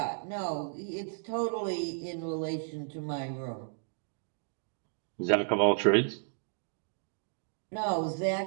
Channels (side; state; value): left; silent; digital silence